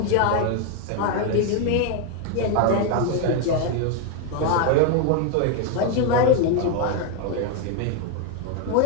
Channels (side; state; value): both; different; correlation 0.01